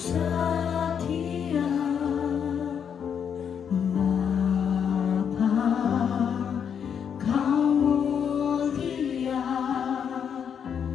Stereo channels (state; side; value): quieter; right; 7.7 dB